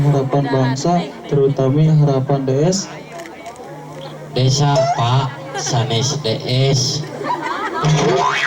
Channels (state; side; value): identical; both; correlation 1.00